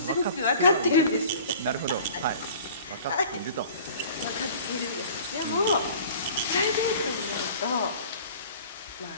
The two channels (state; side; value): inverted; both; correlation -0.46